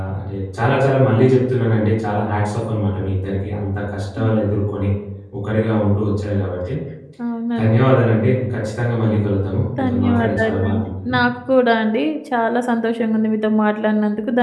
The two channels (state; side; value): identical; both; correlation 1.00